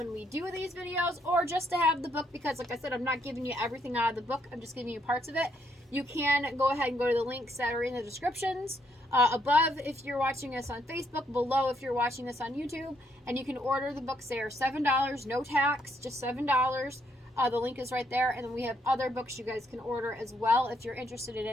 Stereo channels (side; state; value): both; normal; correlation 0.73